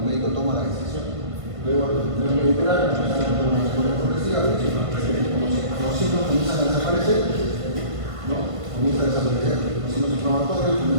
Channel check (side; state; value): left; late; 1.5 ms